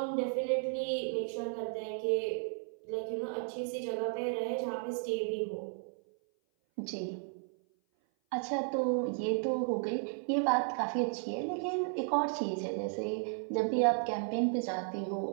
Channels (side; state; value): left; silent; 55 dB below the other